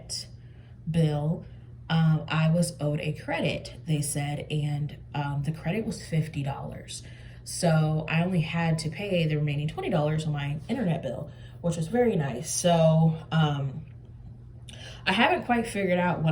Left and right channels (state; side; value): identical; both; correlation 1.00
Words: bill, I was owed a credit, they said, and the credit was $50. So I only had to pay the remaining $20 on my internet bill, which was very nice. So I haven't quite figured out